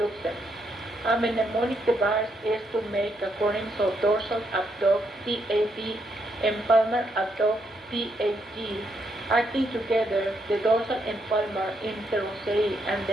them. A mnemonic device is to make acronyms of dorsal abduct DAD and palmar abduct PAD. Acting together, the dorsal and palmar interosseous and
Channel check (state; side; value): normal; both; correlation 0.77